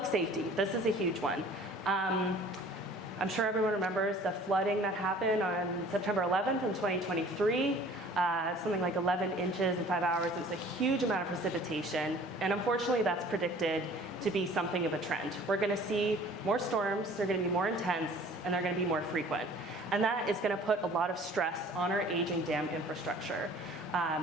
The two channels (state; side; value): normal; both; correlation 0.49